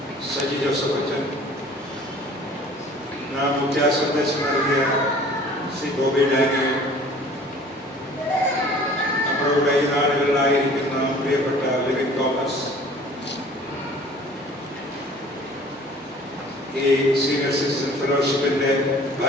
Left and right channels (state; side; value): noise; right; hum, 30 dB below the sound